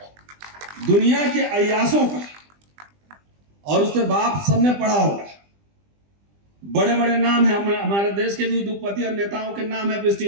दुनिया के अय्यासों का, और उससे बाप सबने पढ़ा होगा। बड़े बड़े नाम है, हमारे देश के भी उद्योगपति और नेताओं के नाम है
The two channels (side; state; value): left; late; 20 ms